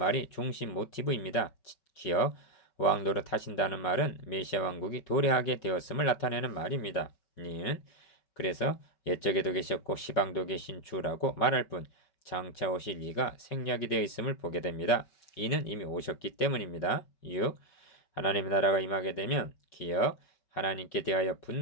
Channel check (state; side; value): late; right; 5.3 ms